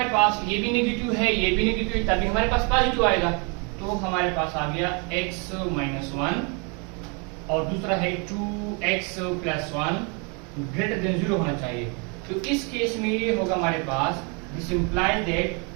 पास ये भी नेगेटिव है, ये भी नेगेटिव है, तभी हमारे पास पॉजिटिव आएगा। तो हमारे पास आ गया x - 1 और दूसरा है 2x + 1 ग्रेटर देन 0 होना चाहिए। तो इस केस में ये होगा हमारे पास, दिस इंप्लाइज दैट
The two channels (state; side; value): quieter; left; 34.1 dB